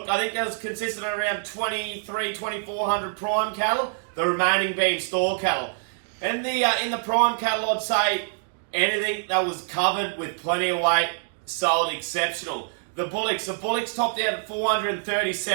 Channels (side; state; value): left; silent; digital silence